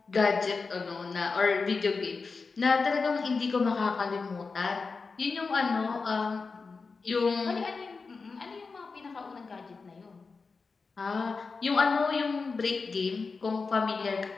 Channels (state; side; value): quieter; right; 4.5 dB